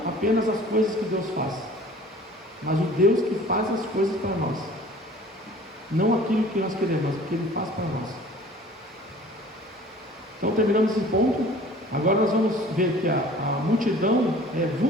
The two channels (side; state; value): both; normal; correlation 0.48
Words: apenas as coisas que Deus faz, mas o Deus que faz as coisas para nós, não aquilo que nós queremos, mas o que Ele faz para nós. Então terminamos esse ponto. Agora nós vamos ver que a multidão é